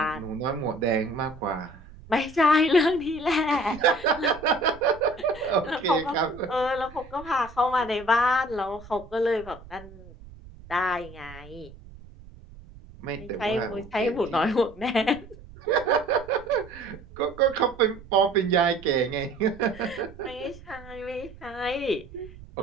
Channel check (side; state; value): right; noise; rumble, 19 dB below the sound